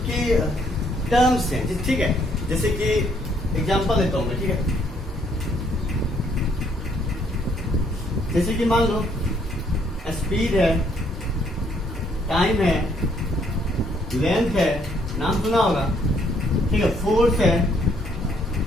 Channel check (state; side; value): normal; both; correlation 0.68